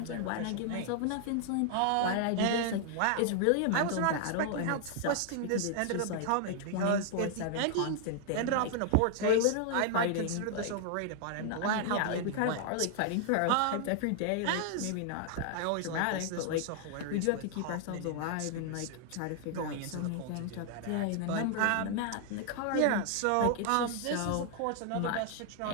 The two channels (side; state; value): both; different; correlation 0.00